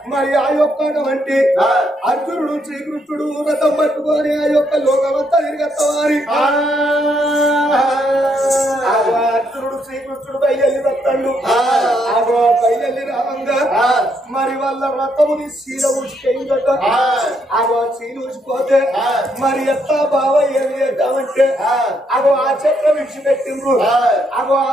మరి ఆ యొక్క వంటి అర్జునుడు శ్రీకృష్ణుడు రథం పట్టుకొని ఆ యొక్క లోకమంతా తిరిగేస్తామని అర్జునుడు శ్రీకృష్ణుడు బయలు వస్తాడు ఆగో బయలు రావంగా మరి వాళ్ళ రథముని శీల ఊసిపోయిందట ఆగో శీల ఊసిపోతే మరి ఎత్తా బావ ఏమి చేద్దామంటే అగో ఆ చక్రం విడిచిపెట్టిండ్రు అగో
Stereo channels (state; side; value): normal; both; correlation 0.74